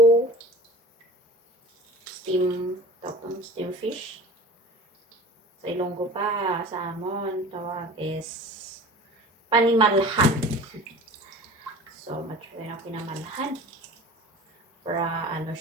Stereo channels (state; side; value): normal; both; correlation 0.39